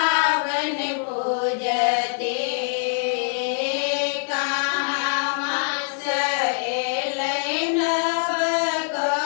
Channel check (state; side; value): silent; right; digital silence